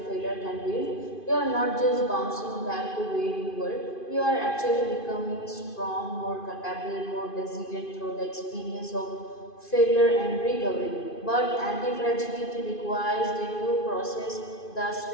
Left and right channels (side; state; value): right; late; 2.5 ms